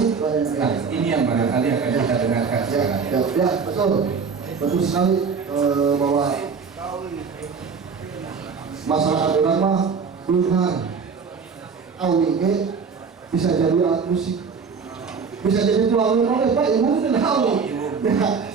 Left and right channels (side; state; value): left; quieter; 5.6 dB